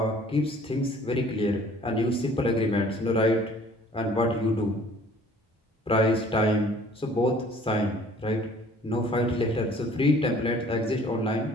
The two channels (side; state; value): both; normal; correlation 0.53